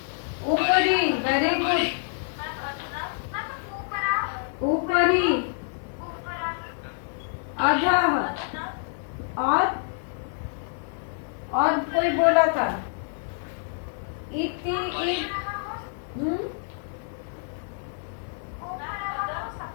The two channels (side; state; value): right; silent; digital silence